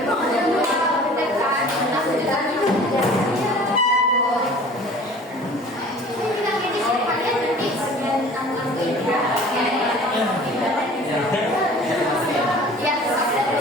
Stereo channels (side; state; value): both; normal; correlation 0.46